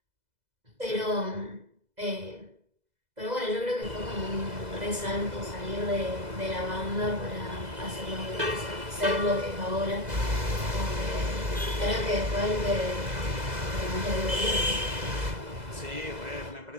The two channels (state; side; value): late; left; 2.0 ms